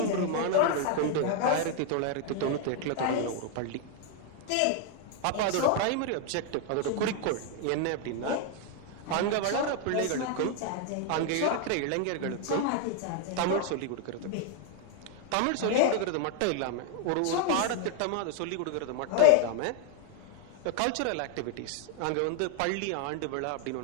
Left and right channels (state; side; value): different; both; correlation 0.00